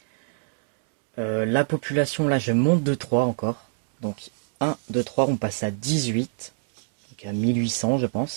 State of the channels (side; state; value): left; silent; digital silence